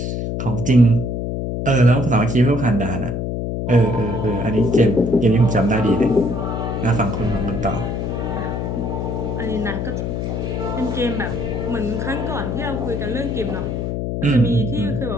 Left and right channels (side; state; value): left; noise; hum, 2 dB below the sound